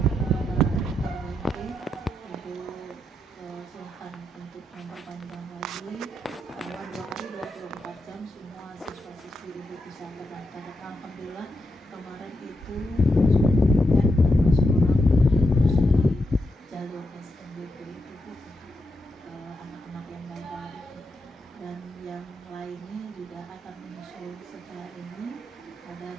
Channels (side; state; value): both; normal; correlation 0.84